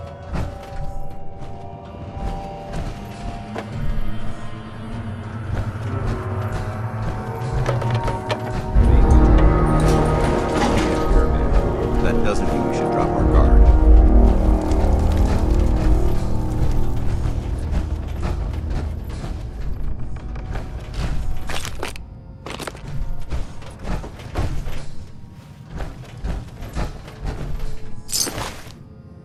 That doesn't mean we should drop our guard.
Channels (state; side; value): identical; both; correlation 1.00